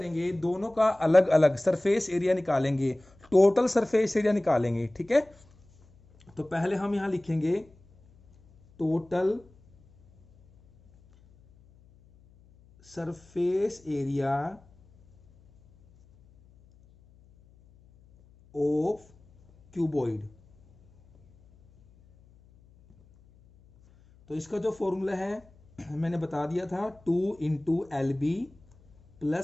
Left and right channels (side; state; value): left; noise; hum, 29 dB below the sound